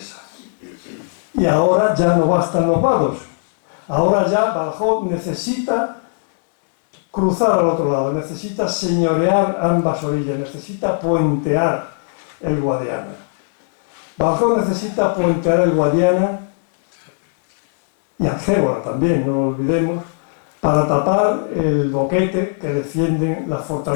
Y ahora ya no bastan los vados, ahora ya Badajoz necesita cruzar al otro lado, necesita señorear ambas orillas, necesita puentear el Guadiana. Badajoz necesita puentear el Guadiana y Algévora también, no lo olvidemos, para tapar el boquete que defienden las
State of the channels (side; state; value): right; silent; digital silence